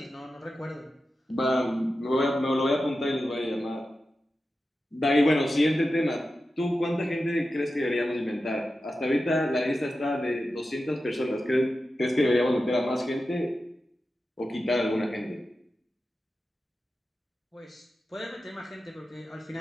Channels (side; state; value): both; normal; correlation 0.92